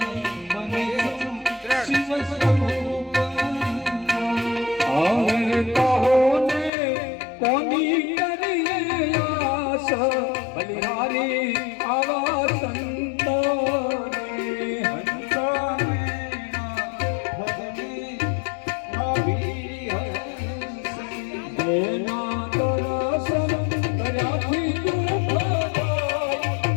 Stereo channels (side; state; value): right; drops out; at 6.7 s